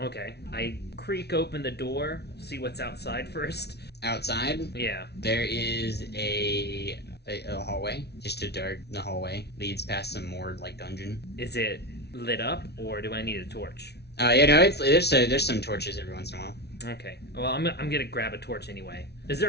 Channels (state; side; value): late; right; 0.49 ms